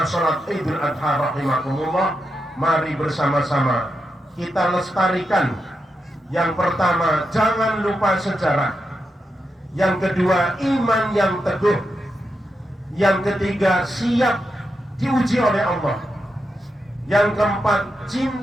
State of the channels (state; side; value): normal; both; correlation 0.86